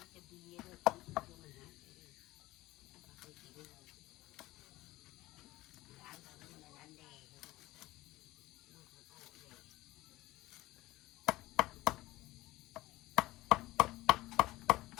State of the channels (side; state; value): right; quieter; 18.2 dB